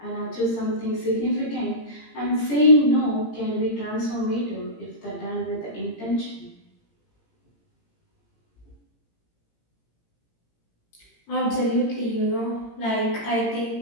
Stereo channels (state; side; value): late; right; 18 ms